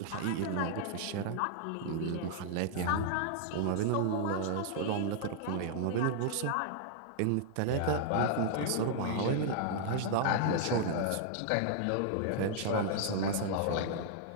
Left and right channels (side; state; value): both; different; correlation -0.01